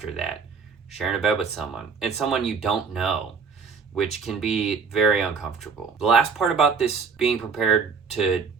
that, sharing a bed with someone, and someone you don't know, which can be very uncomfortable. The last part about this being prepared to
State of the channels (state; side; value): quieter; left; 5.5 dB